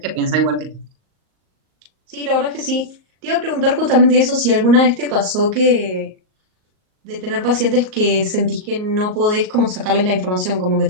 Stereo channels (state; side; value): late; left; 38 ms